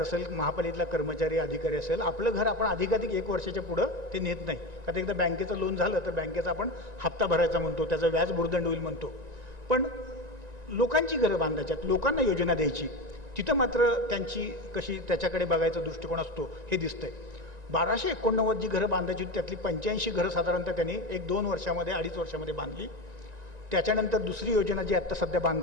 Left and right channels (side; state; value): left; late; 1.9 ms